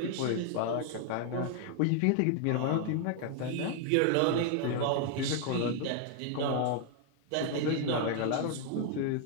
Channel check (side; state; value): both; different; correlation 0.00